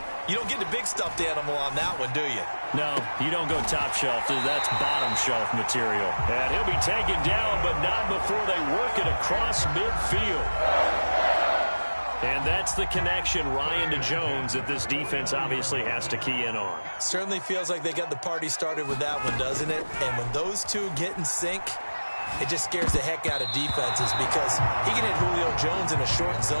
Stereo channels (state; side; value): inverted; both; correlation -1.00